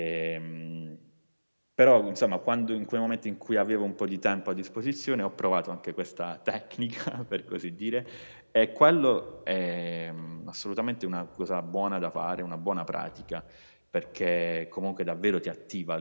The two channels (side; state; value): both; inverted; correlation -1.00